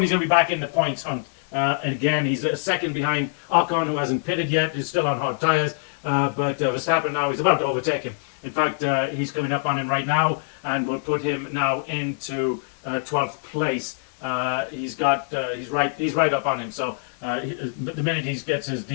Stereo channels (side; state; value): right; silent; digital silence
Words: going to be back in the points hunt. And again, he's a second behind Ocon, who hasn't pitted yet. He's still on hard tires. But Verstappen now is about to overtake him. In fact, he's coming up on him right now, and will put him now into 12th place. He's right up on him. So the minute he gets his